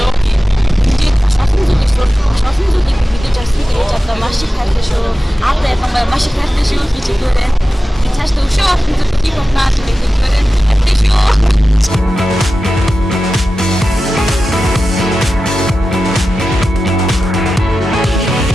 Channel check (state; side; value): normal; both; correlation 0.94